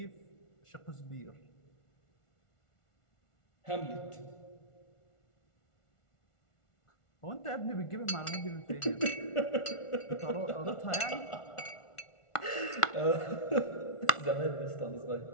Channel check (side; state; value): right; late; 1.4 ms